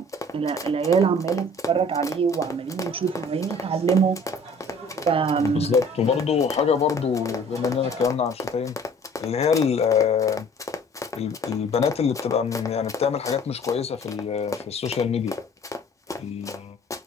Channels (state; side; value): normal; both; correlation 0.51